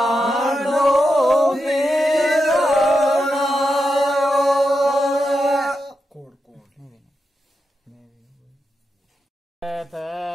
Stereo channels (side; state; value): both; normal; correlation 0.87